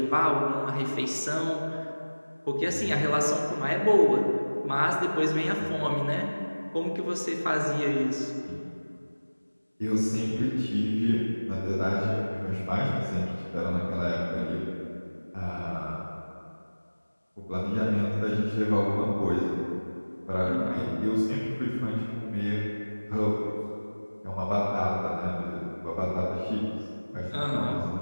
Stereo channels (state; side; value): inverted; both; correlation -1.00